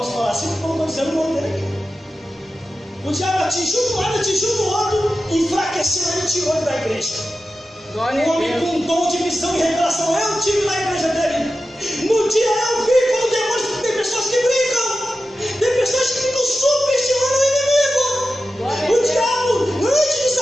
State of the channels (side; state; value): both; normal; correlation 0.93